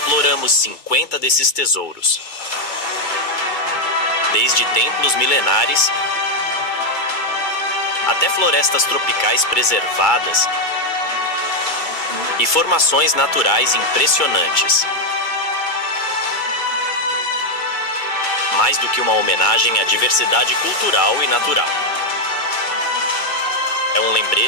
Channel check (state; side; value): late; right; 2.3 ms